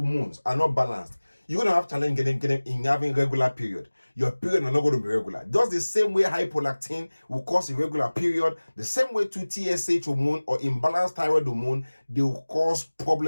are not balanced, you're going to have challenge in having regular period. Your period are not going to be regular. Just the same way hypolactin will cause irregular period, the same way to TSH hormone or imbalanced thyroid hormone, they will cause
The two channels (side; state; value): both; inverted; correlation -1.00